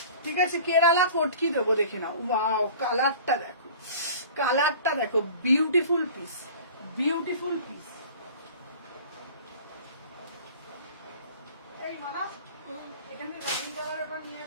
ঠিক আছে, কেরালা কটকি দেবো, দেখে নাও। ওয়াও, কালারটা দেখো, কালারটা দেখো, বিউটিফুল পিস, বিউটিফুল পিস। এই মানা এখানে রানি কালারটা নিয়ে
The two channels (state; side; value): inverted; both; correlation -0.43